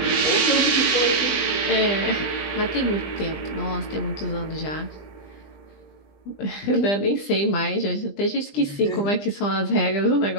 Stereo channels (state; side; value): late; right; 20 ms